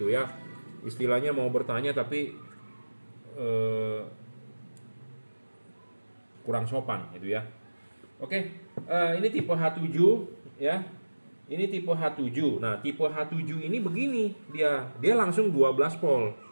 ya. Istilahnya mau bertanya tapi kurang sopan gitu ya. Oke, ini tipe H7 ya. Ini tipe H7. Nah, tipe H7 ini begini, dia langsung 12 volt.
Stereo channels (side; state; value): both; inverted; correlation -1.00